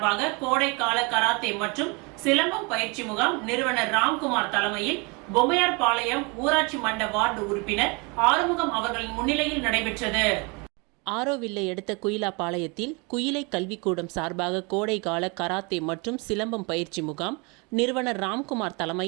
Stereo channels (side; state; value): left; quieter; 29.7 dB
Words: கோடைக்கால கராத்தே மற்றும் சிலம்பம் பயிற்சி முகாம் நிறுவனர் ராம்குமார் தலைமையில் பொம்மையார்பாளையம் ஊராட்சி மன்ற வார்டு உறுப்பினர் ஆறுமுகம் அவர்களின் முன்னிலையில் நடைபெற்றது. ஆரோவில்லை அடுத்த குயிலாப்பாளையத்தில் குயிலை கல்விக்கூடம் சார்பாக கோடைக்கால கராத்தே மற்றும் சிலம்பம் பயிற்சி முகாம் நிறுவனர் ராம்குமார்